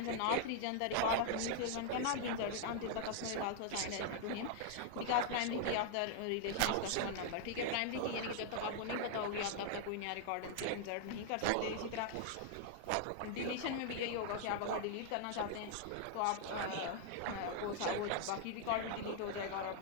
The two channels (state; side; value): different; both; correlation -0.01